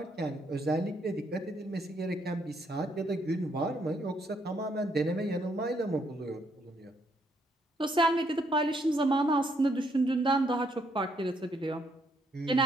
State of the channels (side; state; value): both; normal; correlation 0.72